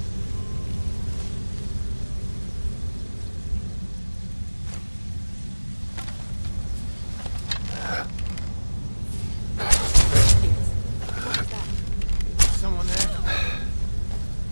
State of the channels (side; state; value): both; inverted; correlation -1.00